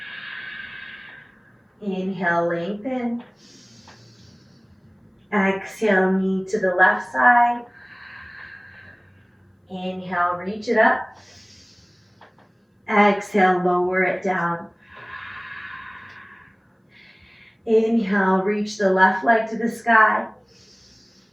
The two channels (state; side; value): identical; both; correlation 1.00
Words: Inhale, lengthen. Exhale, knee to the left side. Inhale, reach it up. Exhale, lower it down. Inhale, reach the left leg to the sky.